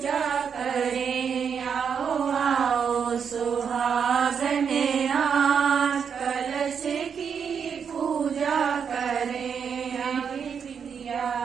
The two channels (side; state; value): left; quieter; 6.9 dB